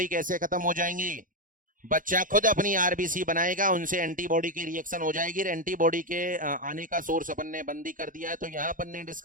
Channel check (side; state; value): left; late; 0.39 ms